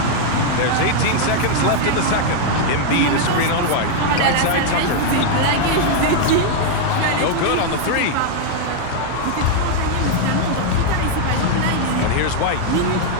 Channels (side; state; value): both; different; correlation 0.00